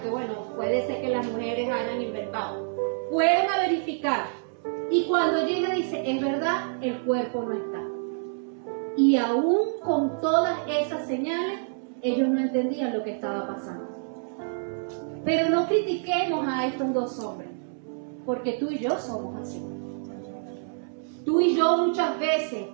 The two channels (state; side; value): silent; left; 60 dB below the other